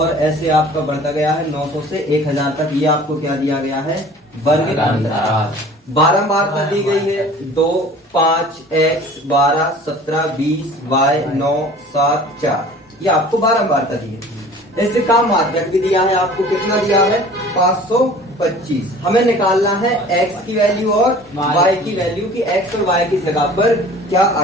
ऐसे आपका बढ़ता गया है 900 से 1000 तक। ये आपको क्या दिया गया है, वर्ग अंतराल। बारंबारता दी गई है 2, 5, x, 12, 17, 20, y, 9, 7, 4। ये आपको बारंबारता दी है। इससे काम माध्यक भी दिया है आपको, कितना दिया है, 525। हमें निकालना है x की वैल्यू और y की वैल्यू की x और y की जगह पर क्या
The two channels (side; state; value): both; normal; correlation 0.46